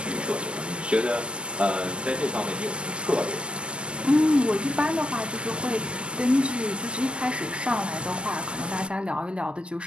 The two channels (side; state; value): left; late; 0.050 ms